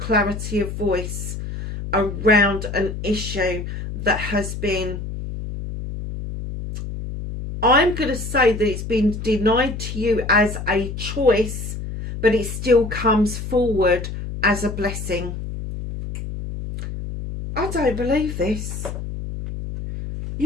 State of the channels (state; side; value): noise; left; hum, 7 dB below the sound